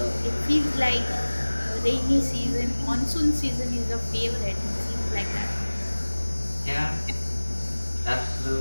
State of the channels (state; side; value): inverted; both; correlation -1.00